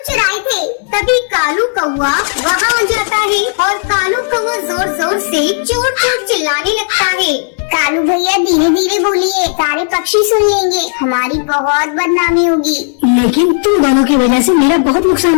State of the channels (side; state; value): right; silent; digital silence